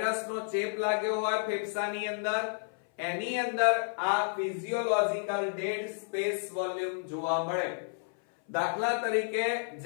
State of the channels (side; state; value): right; silent; 57 dB below the other